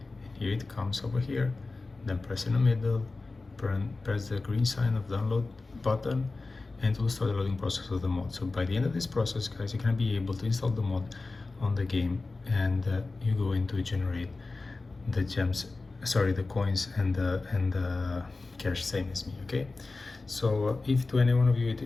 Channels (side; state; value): right; quieter; 3.5 dB